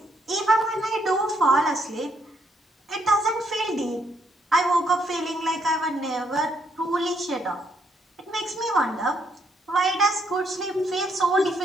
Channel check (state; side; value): normal; both; correlation 0.73